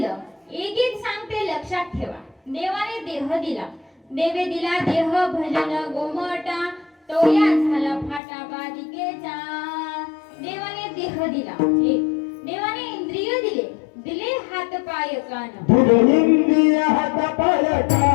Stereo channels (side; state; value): right; drops out; at 8.2 s